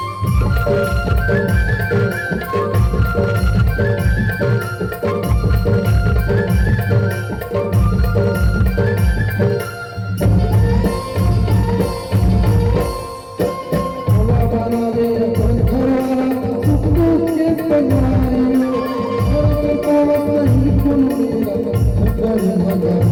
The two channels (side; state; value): both; identical; correlation 1.00